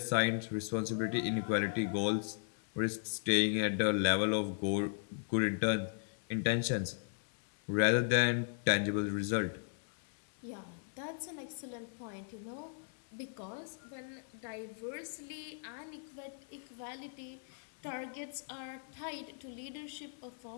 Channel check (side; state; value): right; silent; 53 dB below the other